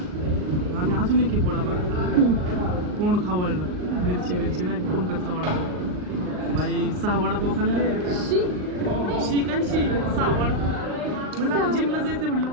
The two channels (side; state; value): left; late; 39 ms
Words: आम्ही अजून एक वडापाव, तोंड खावळलं, मिरची नाही का, पंकजचा वडापाव। बाई 6 वडापाव खाल्ले। शी काय 6 वडापाव म्हणलं, आता जिमला जायचं म्हणलं